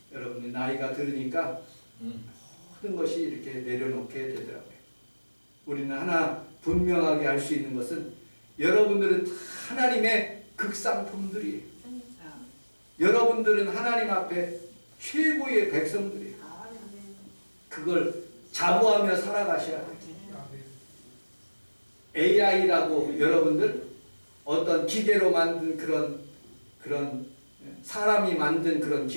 여러분이 나이가 들으니까 모든 것이 이렇게 내려놓게 되더라고요. 우리는 하나 분명하게 알 수 있는 것은 여러분들은 다 하나님의 극상품들이에요. 여러분들은 하나님 앞에 최고의 백성들이에요. 그걸 자부하며 살아가셔야 돼요. AI라고 여러분들 어떤 기계로 만든 그런 사람이 만든 그런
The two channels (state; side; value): inverted; both; correlation -1.00